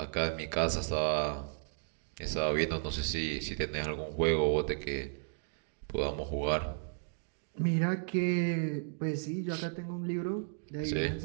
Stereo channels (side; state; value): left; silent; digital silence